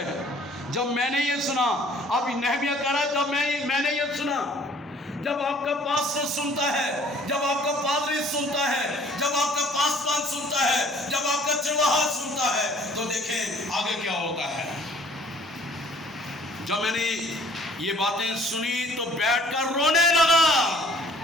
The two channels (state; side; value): normal; both; correlation 0.56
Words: हैं। जब मैंने ये सुना, अब नेहमिया कह रहा है, जब मैंने ये सुना, जब आपका पास्टर सुनता है, जब आपका पादरी सुनता है, जब आपका पासवान सुनता है, जब आपका चरवाहा सुनता है, तो देखें आगे क्या होता है। जब मैंने ये बातें सुनी तो बैठकर रोने लगा।